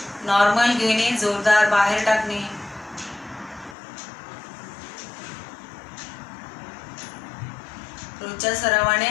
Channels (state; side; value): drops out; right; at 3.8 s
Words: नॉर्मल घेणे, जोरदार बाहेर टाकणे. रोजच्या सरावाने